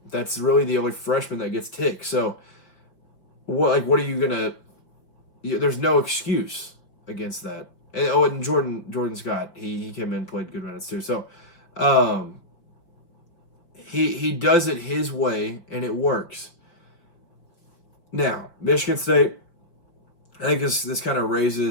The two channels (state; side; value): late; right; 5.1 ms